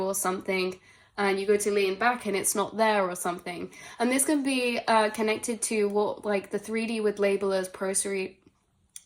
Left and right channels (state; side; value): identical; both; correlation 1.00